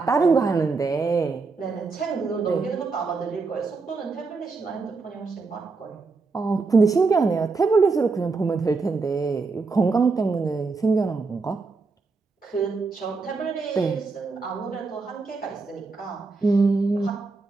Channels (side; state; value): left; quieter; 4.2 dB